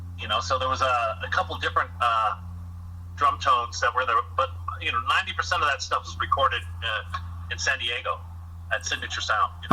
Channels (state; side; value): identical; both; correlation 1.00